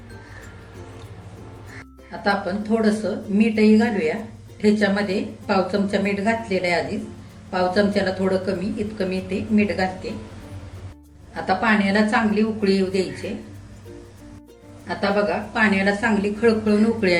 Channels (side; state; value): both; identical; correlation 1.00